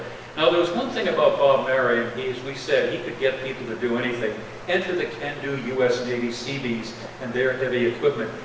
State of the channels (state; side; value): identical; both; correlation 1.00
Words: Now, there was one thing about Bob Merriam. As we said, he could get people to do anything. Enter the can-do U.S. Navy Seabees and their heavy equipment.